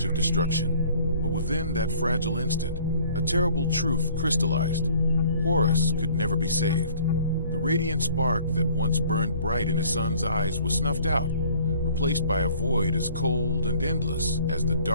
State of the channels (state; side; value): inverted; both; correlation -0.55